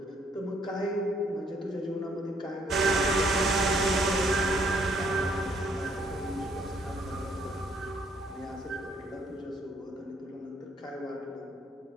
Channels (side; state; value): both; normal; correlation 0.67